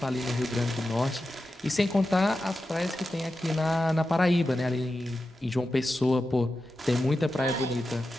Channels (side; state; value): both; normal; correlation 0.91